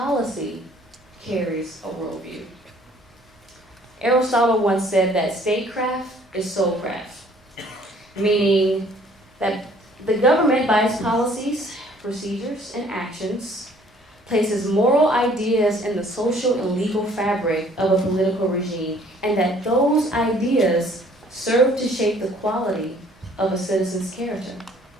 carries a worldview. Aristotle once said that statecraft is soulcraft, meaning that the government, by its policies, procedures, and actions, places moral ideas in the social and legal fabric of a political regime, and that those ideas serve to shape the quality of a citizen's character.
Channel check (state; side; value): normal; both; correlation 0.58